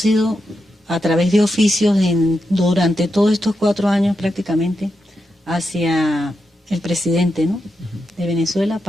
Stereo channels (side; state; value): both; normal; correlation 0.86